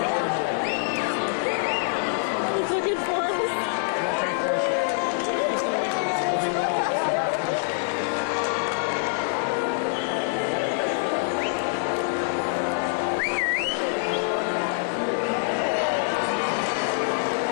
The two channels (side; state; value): right; silent; digital silence